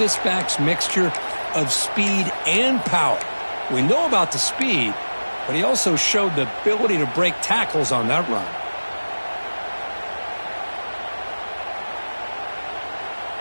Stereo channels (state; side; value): inverted; both; correlation -1.00